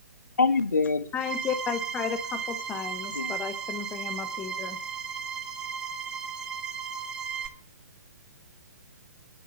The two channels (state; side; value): normal; both; correlation -0.08